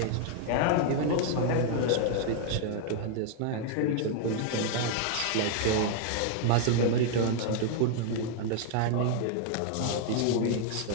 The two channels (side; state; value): both; different; correlation 0.00